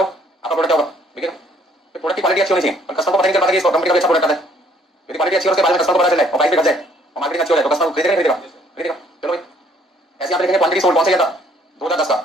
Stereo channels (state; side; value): normal; both; correlation 0.63